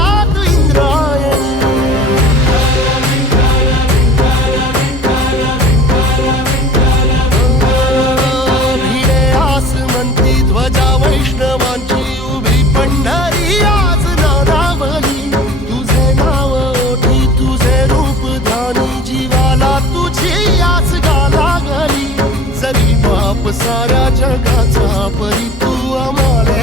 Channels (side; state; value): both; normal; correlation 0.43